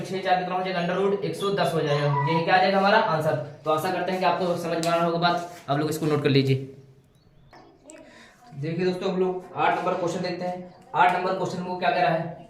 4 कितना हो जाएगा अंडर रूट 110 हो जाएगा। यही क्या आ जाएगा हमारा आंसर। तो आशा करते हैं कि आपको समझ में आना होगा बात, आप लोग इसको नोट कर लीजिए। देखिए दोस्तों हम लोग 8 नंबर क्वेश्चन देखते हैं। 8 नंबर क्वेश्चन को क्या कह रहा है,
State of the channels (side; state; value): both; identical; correlation 1.00